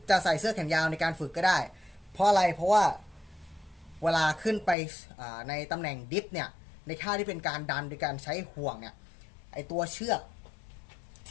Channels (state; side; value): drops out; right; at 4.8 s